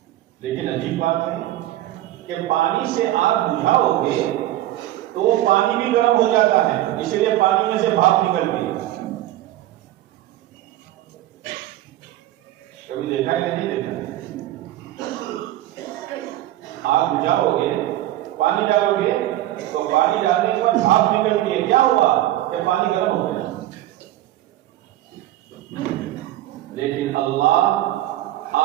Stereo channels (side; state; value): left; quieter; 14.6 dB